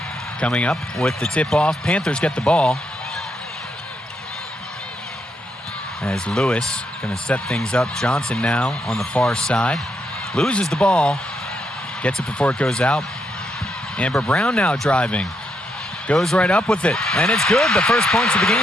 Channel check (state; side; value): normal; both; correlation 0.79